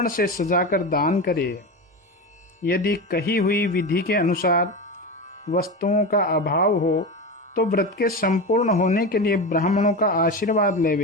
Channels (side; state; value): both; normal; correlation 0.22